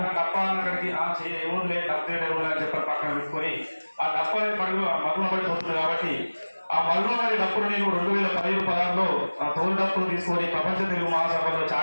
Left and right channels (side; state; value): both; inverted; correlation -1.00